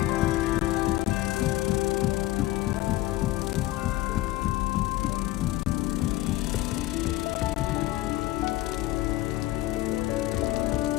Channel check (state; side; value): quieter; right; 17.0 dB